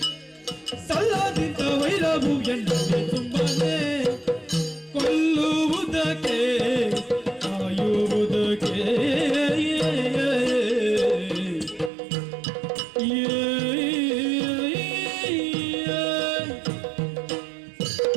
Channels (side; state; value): left; drops out; at 11.9 s